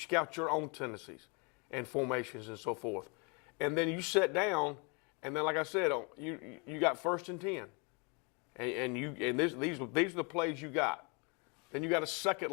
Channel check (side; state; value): right; quieter; 32.5 dB